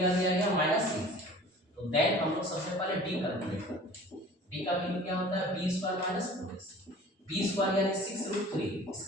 दिया गया -6। तो देन हम लोग सबसे पहले d कैलकुलेट करते हैं। d का वैल्यू क्या होता है b² - 4ac, b² यानी 6√3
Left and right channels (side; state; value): both; normal; correlation 0.45